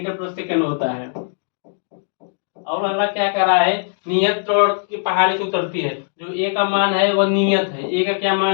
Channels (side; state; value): right; silent; digital silence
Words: प्रति सेकंड होता है। और अगला क्या कर रहा है, नियत त्वरण की पहाड़ी से उतरती है, जो ए का मान है वह नियत है, ए का क्या